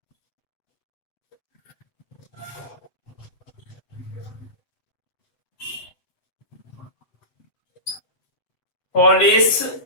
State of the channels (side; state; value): right; late; 7.9 ms